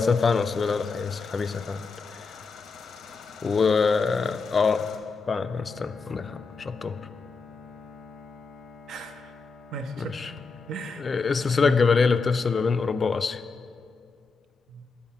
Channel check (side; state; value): right; quieter; 4.6 dB